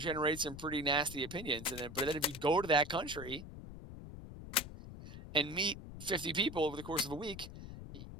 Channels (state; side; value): noise; left; rumble, 12 dB below the sound